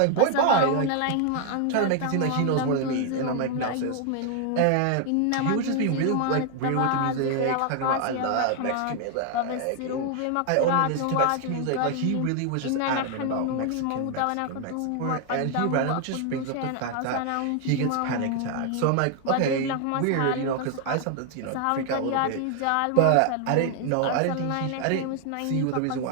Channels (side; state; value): both; different; correlation 0.00